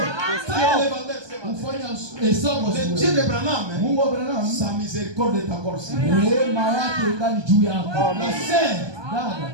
Ufanya hesabu Le Dieu de Branham, Mungu wa Branham, sa miséricorde est encore sur lui. rehema yake ingali juu yako. La sœur, Dada,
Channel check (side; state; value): left; late; 1.2 ms